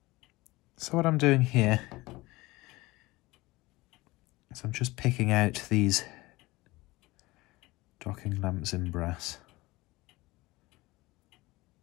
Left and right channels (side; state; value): right; quieter; 20.7 dB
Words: So what I'm doing here is I'm just picking out these docking lamps in brass.